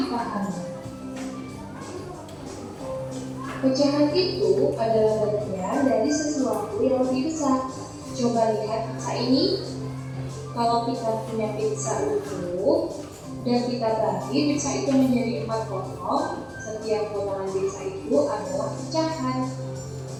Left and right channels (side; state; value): both; identical; correlation 1.00